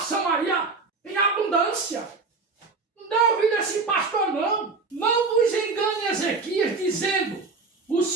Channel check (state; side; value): quieter; left; 4.2 dB